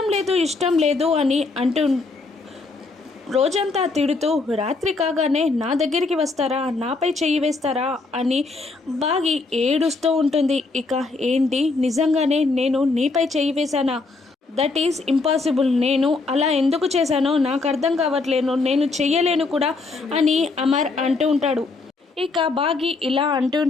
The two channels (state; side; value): quieter; right; 3.8 dB